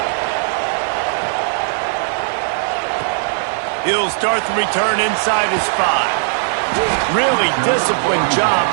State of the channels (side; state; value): left; silent; digital silence